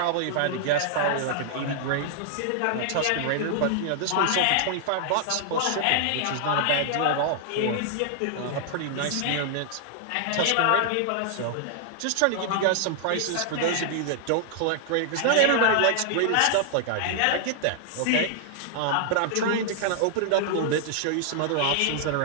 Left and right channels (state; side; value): different; both; correlation -0.01